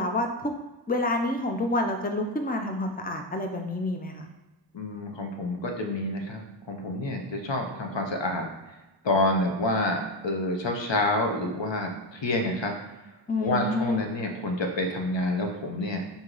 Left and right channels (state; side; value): normal; both; correlation 0.13